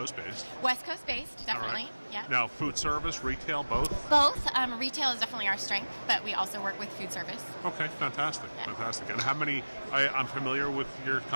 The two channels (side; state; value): both; inverted; correlation -1.00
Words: based. West Coast based, definitely. Right. Yeah. Now, food service, retail, both? Both. Retail is definitely our strength, but we also work with food service. Okay, fantastic. Yeah. Fantastic. And how many, I'm familiar with your